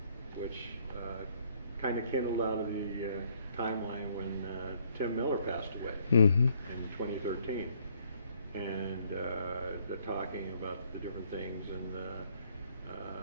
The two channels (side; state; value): both; inverted; correlation -0.65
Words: which kind of kindled out of the timeline when Tim Miller passed away in 2013. And the talking about the different things, and